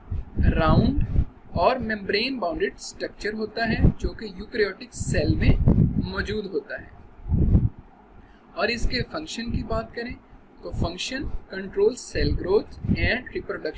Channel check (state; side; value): identical; both; correlation 1.00